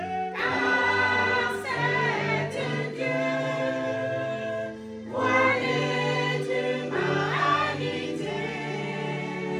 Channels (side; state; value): both; identical; correlation 1.00